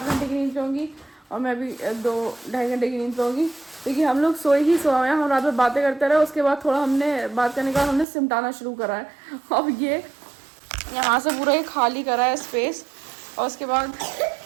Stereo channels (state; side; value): drops out; left; at 8.1 s